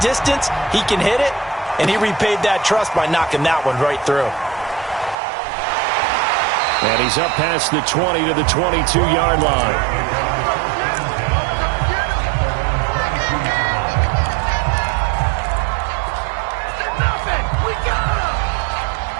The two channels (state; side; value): drops out; left; at 5.2 s